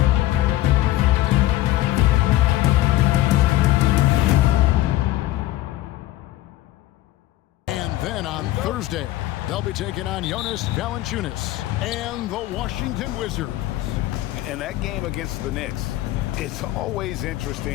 Then on Thursday, they'll be taking on Jonas Valanciunas and the Washington Wizards. And that game against the Knicks, it's always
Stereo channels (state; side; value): quieter; right; 15.5 dB